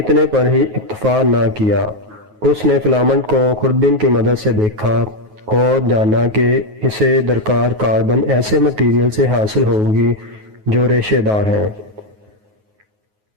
پر ہی اکتفا نہ کیا۔ اس نے فلامنٹ کو خوردبین کی مدد سے دیکھا اور جانا کہ اسے درکار کاربن ایسے مٹیریل سے حاصل ہوگی جو ریشے دار ہیں۔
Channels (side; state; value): left; late; 9.4 ms